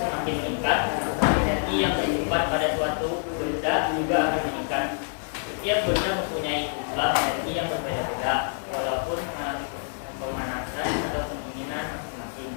meningkat, energi yang tersimpan pada suatu benda juga akan meningkat. Setiap benda mempunyai jumlah energi yang berbeda-beda, walaupun mengalami pemanasan atau pendinginan masing-masing.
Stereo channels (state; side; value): silent; right; digital silence